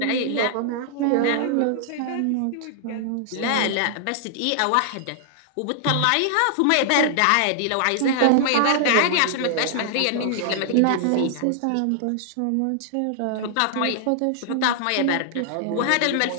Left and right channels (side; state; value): both; different; correlation -0.01